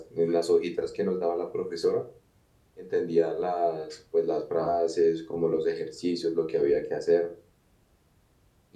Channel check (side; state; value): both; identical; correlation 1.00